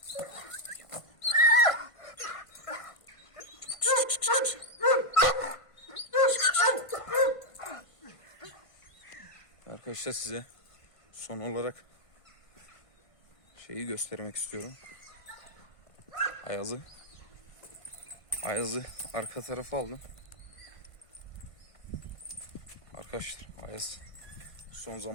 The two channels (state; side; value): late; right; 1.5 ms